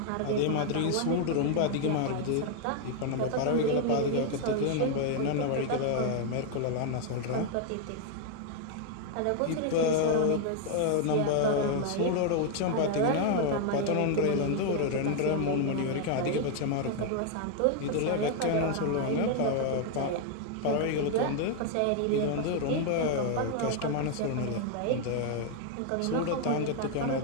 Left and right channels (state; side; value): different; both; correlation 0.00